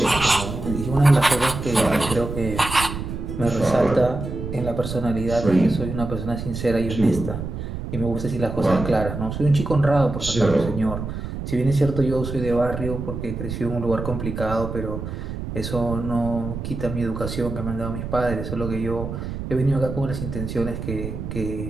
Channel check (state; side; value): noise; right; rumble, 6 dB below the sound